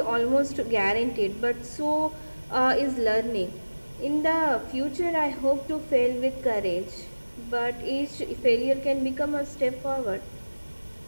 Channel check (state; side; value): inverted; both; correlation -1.00